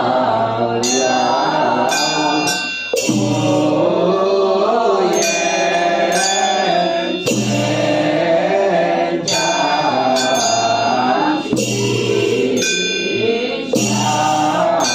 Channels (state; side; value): noise; right; hum, 28 dB below the sound